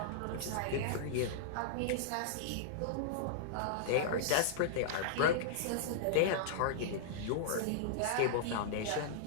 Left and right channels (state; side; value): different; both; correlation -0.02